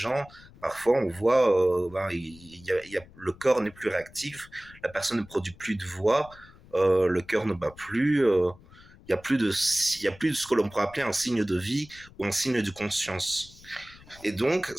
parfois, on voit, le corps n'est plus réactif, la personne ne produit plus de voix, le cœur ne bat plus. Il y a plus de ce que l'on pourrait appeler un signe de vie ou un signe de conscience. Et donc,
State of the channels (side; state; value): left; noise; rumble, 23 dB below the sound